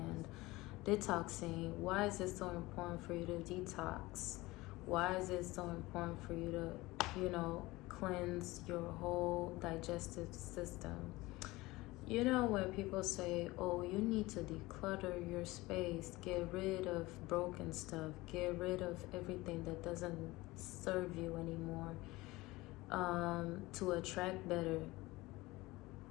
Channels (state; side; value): quieter; right; 20.4 dB